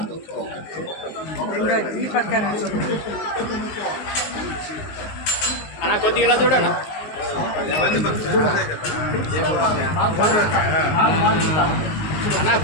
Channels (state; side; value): late; right; 19 ms